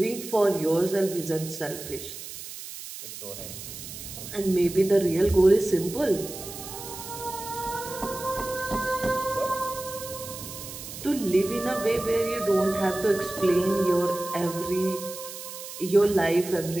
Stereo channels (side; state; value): right; noise; hiss, 11 dB below the sound